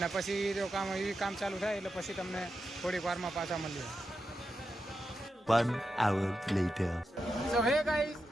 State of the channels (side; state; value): both; normal; correlation 0.88